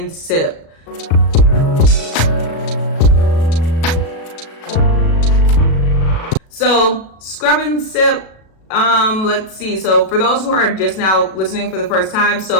sip. So scrub and sip. Let's see. So for those who are just now listening for the first time,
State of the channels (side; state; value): right; late; 37 ms